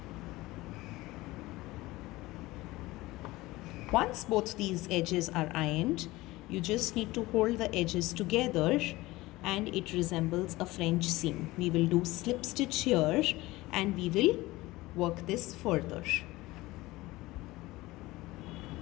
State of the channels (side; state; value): right; quieter; 19.4 dB